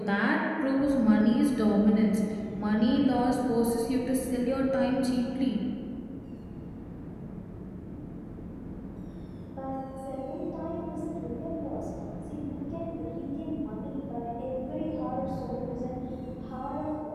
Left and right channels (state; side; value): identical; both; correlation 1.00